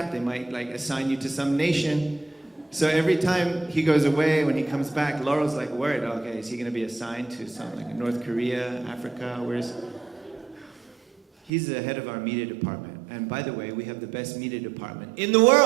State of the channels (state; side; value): drops out; left; at 11.5 s